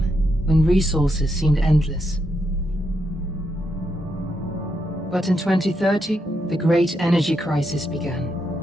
when resources seemed endless. But in 2030, the great energy crisis began.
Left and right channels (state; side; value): normal; both; correlation 0.81